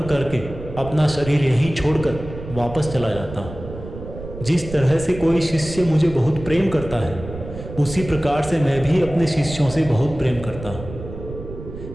करके अपना शरीर यहीं छोड़कर वापस चला जाता हूँ। जिस तरह से कोई शिष्य मुझे बहुत प्रेम करता है, उसी प्रकार से मैं भी अपने शिष्यों से बहुत प्रेम करता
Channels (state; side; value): noise; right; rumble, 12 dB below the sound